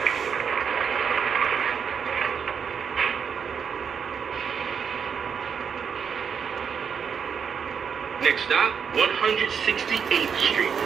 Next stop, 168th Street,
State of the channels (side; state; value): left; quieter; 6.8 dB